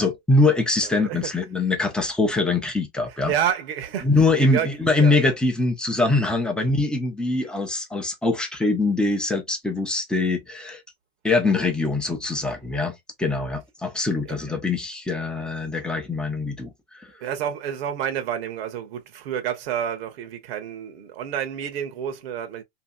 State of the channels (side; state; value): both; normal; correlation 0.55